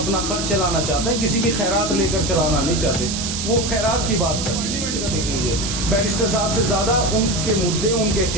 खर्च चलाना चाहते हैं, किसी की खैरात लेकर चलाना नहीं चाहते। वो खैरात की बात कर, पार्लियामेंट का देख लीजिए, बैरिस्टर साहब से ज़्यादा उनके मुद्दे उनके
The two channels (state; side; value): noise; right; hiss, 4 dB below the sound